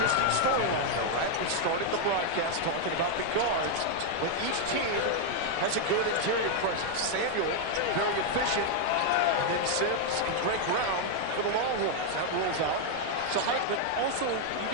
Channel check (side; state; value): both; different; correlation 0.00